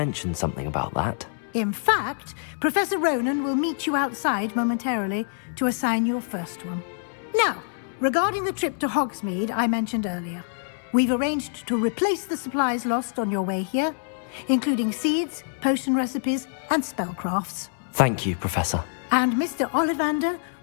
something about that. In fact, Professor Ronan will meet you outside momentarily to assign your first one. Now, regarding the trip to Hogsmeade I mentioned earlier, we've arranged to replace the supplies lost on your way here, including seeds, potion recipes, and spellcrafts. Thank you, Professor. And Mr. Ollivander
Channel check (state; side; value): silent; right; 59 dB below the other